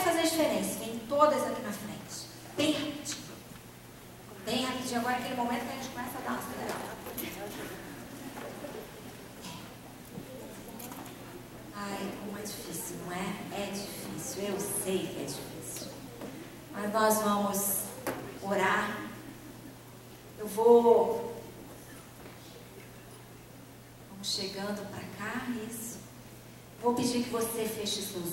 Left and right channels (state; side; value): identical; both; correlation 1.00